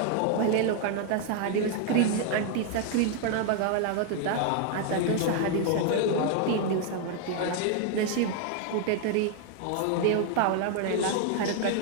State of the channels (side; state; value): both; different; correlation 0.00